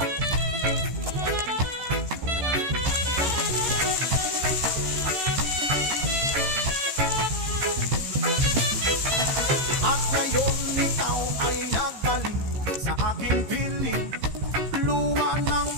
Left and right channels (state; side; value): late; left; 15 ms